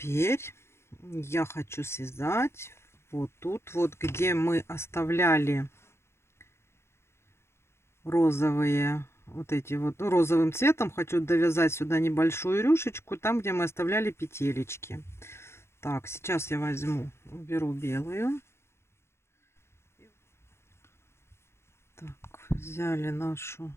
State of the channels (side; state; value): right; late; 0.12 ms